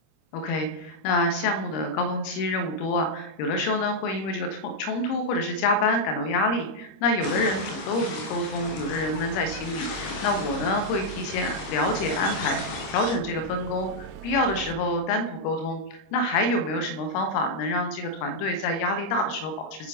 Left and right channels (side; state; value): right; late; 25 ms